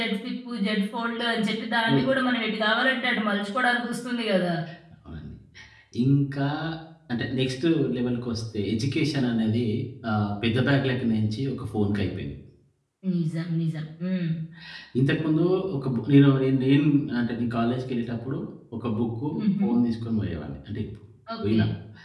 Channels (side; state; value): both; identical; correlation 1.00